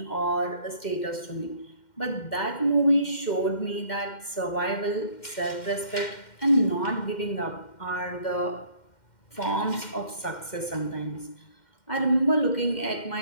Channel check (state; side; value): late; right; 2.1 ms